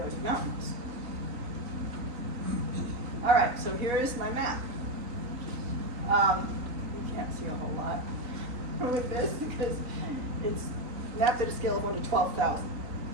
Mountains. All right, so here is my map. You can't see a whole lot with this because it's mapped at a scale of 1 to 12,000.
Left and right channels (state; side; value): late; left; 3.9 ms